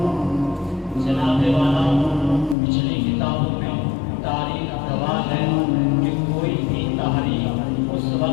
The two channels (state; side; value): drops out; right; at 2.6 s